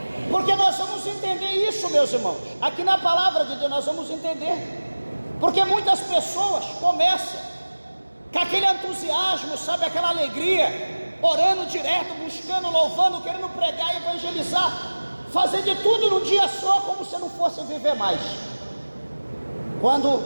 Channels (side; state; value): both; inverted; correlation -1.00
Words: Porque nós vamos entender isso, meus irmãos. Aqui na palavra de Deus nós vamos entender. Porque muitas pessoas começam com aquele entusiasmo, sabe, aquela alegria, orando direto, buscando, louvando, querendo pregar, evangelizar, fazer de tudo num dia só, como se não fosse viver mais. Quando